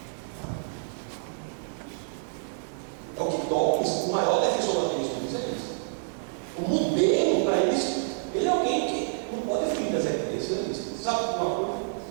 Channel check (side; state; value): left; silent; digital silence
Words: É o que Dawkins, o maior defensor do ateísmo, diz é isso. O modelo para isso, ele é alguém que não pode fugir das evidências. Sabe uma coisa?